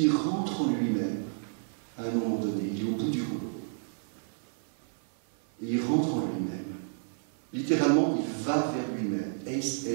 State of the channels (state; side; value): silent; left; 57 dB below the other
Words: rentre en lui-même à un moment donné, il est au bout du rouleau. Et il rentre en lui-même. Littéralement, il va vers lui-même.